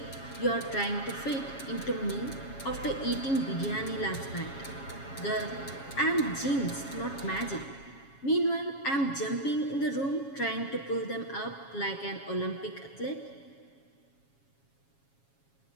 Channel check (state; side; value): late; right; 7.3 ms